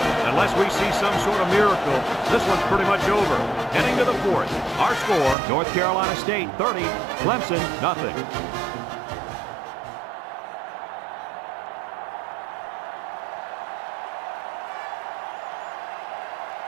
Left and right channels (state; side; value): drops out; left; at 5.4 s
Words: Unless we see some sort of miracle, this one's pretty much over. Heading to the 4th. Our score, North Carolina State 30, Clemson nothing.